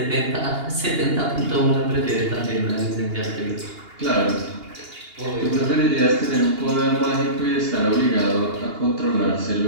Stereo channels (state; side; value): late; left; 2.8 ms